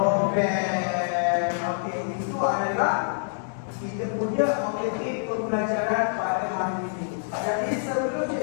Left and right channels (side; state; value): right; silent; digital silence